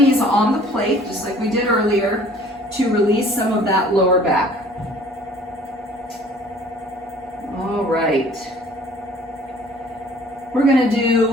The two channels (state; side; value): normal; both; correlation 0.52